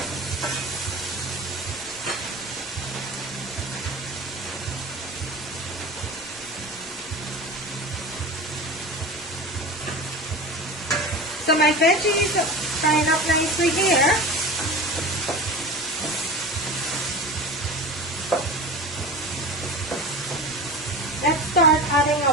So my veggies are frying up nicely here. Let's start adding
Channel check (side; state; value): both; normal; correlation 0.31